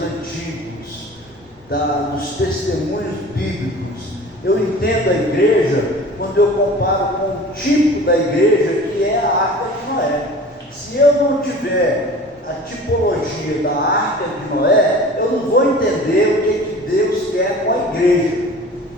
antigos, dos testemunhos bíblicos. Eu entendo a igreja quando eu comparo com o tipo da igreja que é a Arca de Noé. Se eu não tiver a tipologia da Arca de Noé, eu não vou entender o que Deus quer com a igreja.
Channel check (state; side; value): normal; both; correlation 0.41